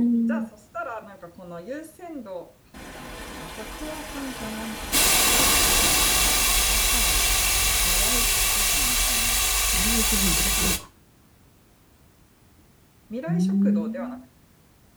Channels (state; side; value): identical; both; correlation 1.00